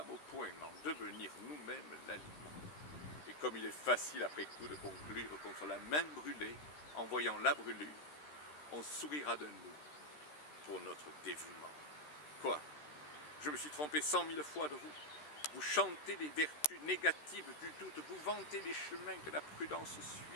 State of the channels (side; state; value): right; late; 13 ms